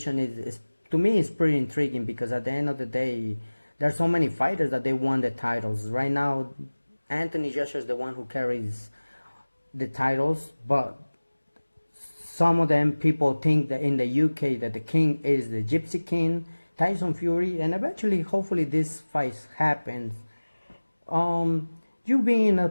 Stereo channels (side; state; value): both; inverted; correlation -1.00